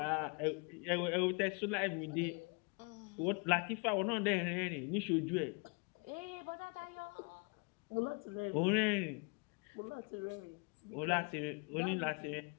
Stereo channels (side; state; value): right; quieter; 32.8 dB